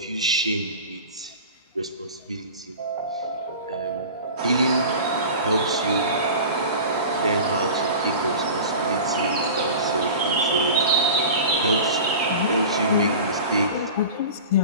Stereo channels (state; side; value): inverted; both; correlation -0.35